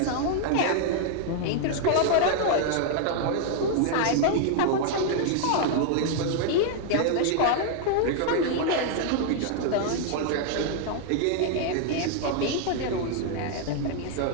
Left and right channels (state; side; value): different; both; correlation 0.00